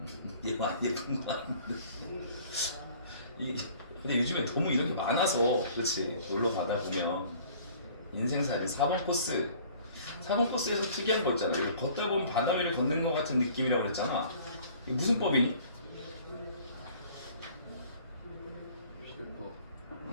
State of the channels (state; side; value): inverted; both; correlation -0.53